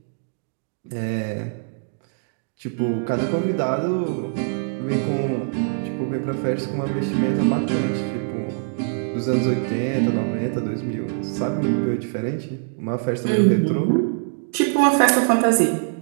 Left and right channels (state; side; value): silent; left; digital silence